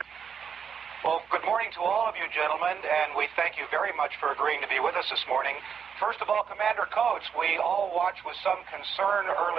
Well, good morning to all of you gentlemen, and we thank you very much for agreeing to be with us this morning. First of all, Commander Coates, we all watched with some concern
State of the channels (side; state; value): left; quieter; 7.1 dB